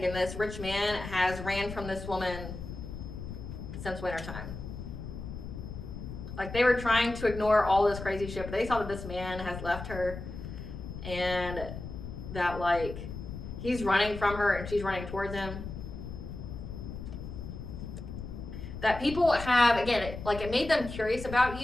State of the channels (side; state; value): left; noise; rumble, 9 dB below the sound